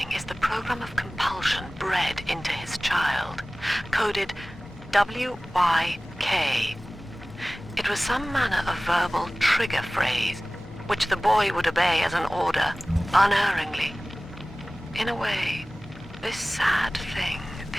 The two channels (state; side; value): normal; both; correlation 0.98